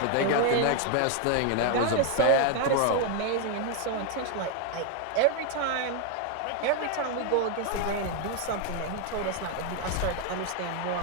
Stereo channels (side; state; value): both; different; correlation 0.01